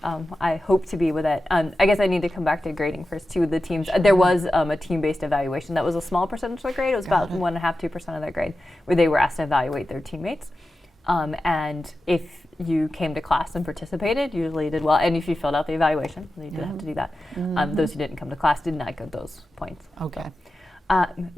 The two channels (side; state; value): both; normal; correlation 0.92